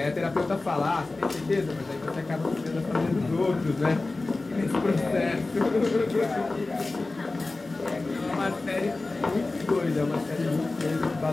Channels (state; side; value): quieter; right; 3.3 dB